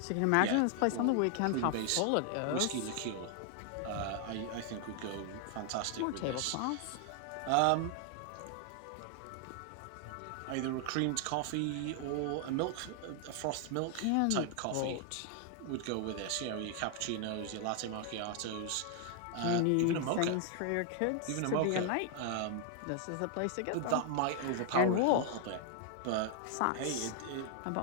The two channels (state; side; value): different; both; correlation 0.00